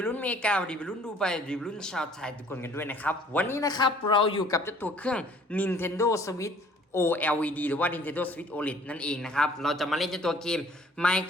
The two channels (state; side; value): normal; both; correlation 0.55